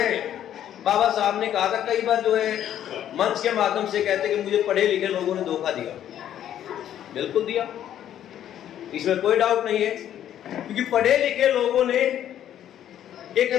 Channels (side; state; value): right; quieter; 10.9 dB